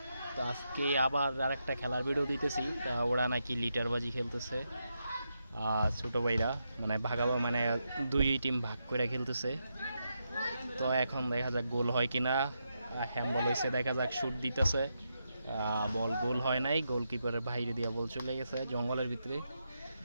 তো আজকে আবার আরেকটা খেলার ভিডিও দিতেছি। ওরা নাকি লিটারবাজি খেলতেছে, ছোটো ভাইরা মানে ভাগাবো, মানে দুই টিম ভাগ করে খেলতেছে। তো এখন দেখা যাক গোল হয় কিনা। হ্যান্ডবল হয়েছে, দেখা যাক শুট দিতেছে, বল গোল হয় নাই, গোলকিপারের বাইরে দিয়ে বল চলে গেছে জঙ্গলের ভিতরে।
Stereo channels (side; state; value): both; inverted; correlation -0.84